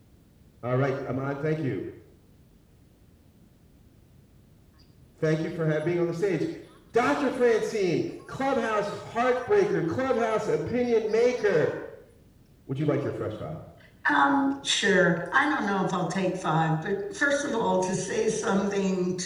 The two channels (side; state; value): both; identical; correlation 1.00